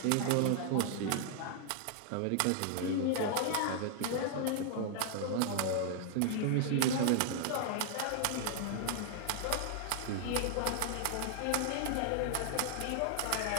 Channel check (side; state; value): both; different; correlation 0.00